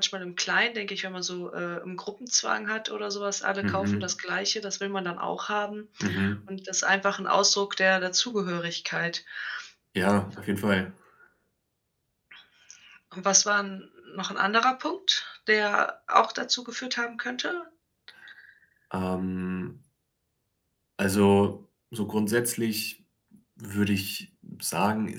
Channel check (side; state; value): both; identical; correlation 1.00